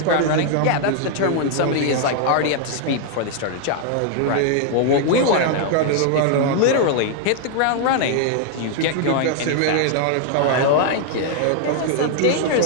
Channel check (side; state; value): both; different; correlation 0.00